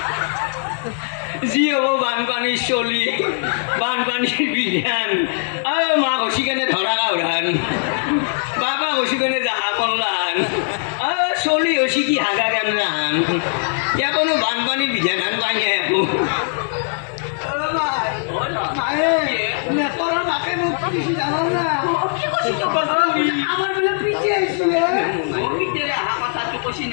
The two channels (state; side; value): silent; right; 61 dB below the other